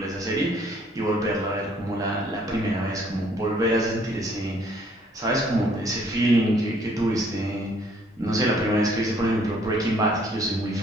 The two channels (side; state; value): both; normal; correlation 0.62